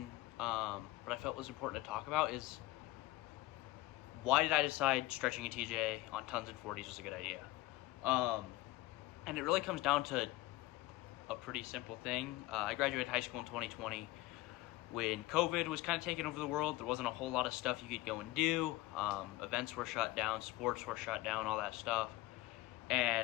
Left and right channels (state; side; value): quieter; right; 18.4 dB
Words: but I felt was important to talk about is, why did I decide stretching a TJ on tons and 40s was a good idea? And it really comes down to a pretty simple thing. I graduated high school in 2020 when COVID was kind of taking over the world. There wasn't a whole lot of stuff you could go and do. Events were shut down, sports were shut down, all that stuff.